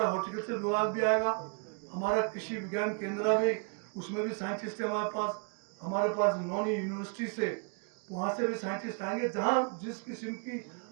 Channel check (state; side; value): quieter; left; 38.2 dB